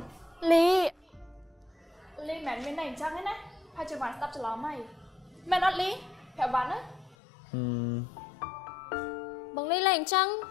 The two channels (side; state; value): right; drops out; at 7.2 s